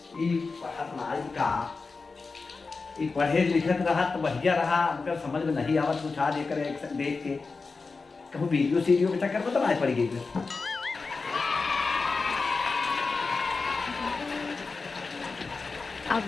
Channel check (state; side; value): quieter; right; 4.2 dB